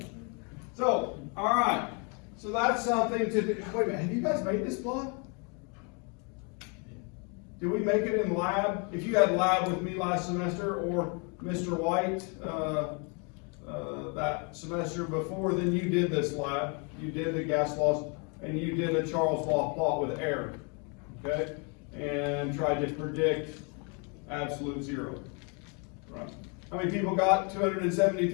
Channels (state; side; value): quieter; right; 35.1 dB